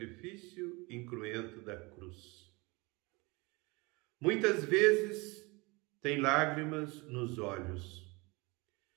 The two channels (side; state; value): left; quieter; 25.8 dB